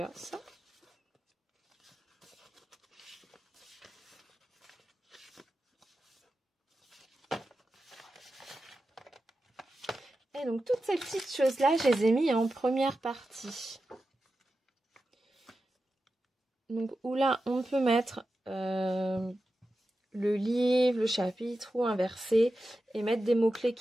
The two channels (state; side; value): normal; both; correlation 0.92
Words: Et donc, toutes ces petites choses-là, je les ai mis en première partie. Donc, où là, on peut mettre le livre, le chapitre ou un verset et mettre des mots-clés